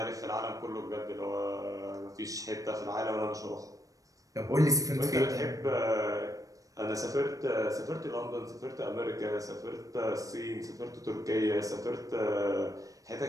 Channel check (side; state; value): left; late; 0.16 ms